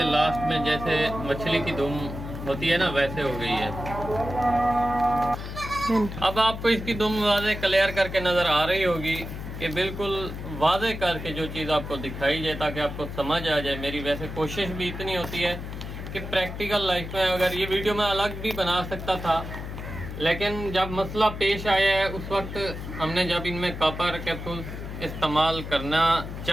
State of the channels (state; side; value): noise; left; hum, 8 dB below the sound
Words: लास्ट में, जैसे मछली की दुम होती है ना, वैसे हो गई है। अब आपको इसकी दुम वाज़े क्लियर करके नज़र आ रही होगी कि बिल्कुल वाज़े करके जो चीज़ आपको दिखाई जाए ताकि आपको समझ आ जाए। मेरी वैसे कोशिश भी इतनी होती है कि प्रैक्टिकल लाइफ में, अगर ये वीडियो मैं अलग भी बना सकता था, लेकिन जब मसला पेश आया है उस वक्त हमने जब इनमें कापर कैप्सूल इस्तेमाल करना